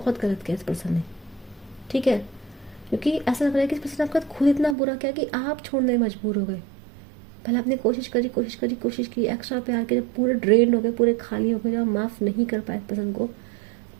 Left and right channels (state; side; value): drops out; left; at 4.8 s